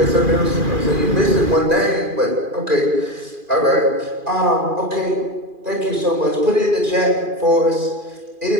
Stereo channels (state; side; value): late; left; 2.4 ms